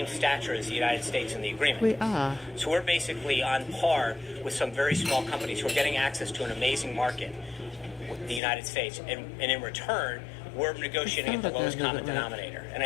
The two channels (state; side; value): drops out; right; at 8.4 s